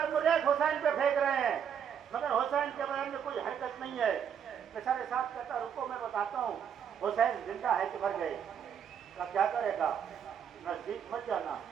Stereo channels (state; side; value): quieter; left; 8.1 dB